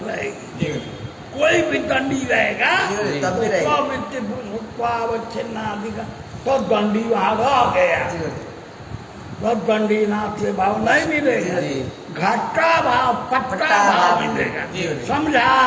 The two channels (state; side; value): identical; both; correlation 1.00